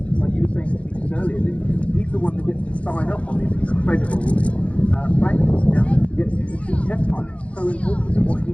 like you were saying to me earlier, he's the one that gets to sign up on these incredible planes. Now he gets to see test pilots. So important that what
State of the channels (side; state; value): right; late; 0.063 ms